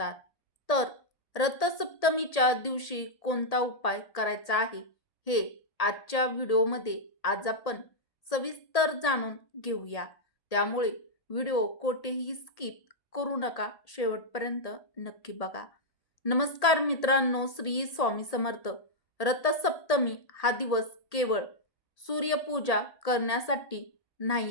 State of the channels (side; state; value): right; late; 1.7 ms